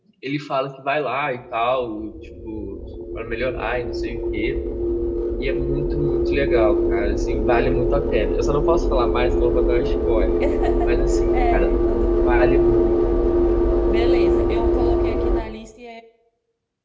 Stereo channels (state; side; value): identical; both; correlation 1.00